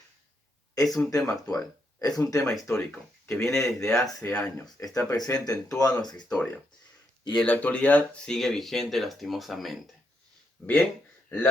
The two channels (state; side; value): normal; both; correlation 0.79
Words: es un tema actual, es un tema histórico, que viene desde hace años, está presente en toda nuestra historia y en la actualidad sigue vigente lastimosamente. Bien,